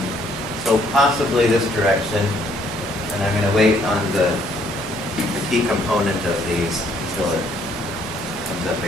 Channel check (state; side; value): normal; both; correlation 0.66